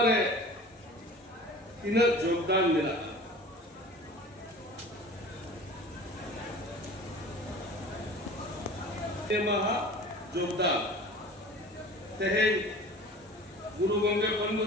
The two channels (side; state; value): both; normal; correlation 0.41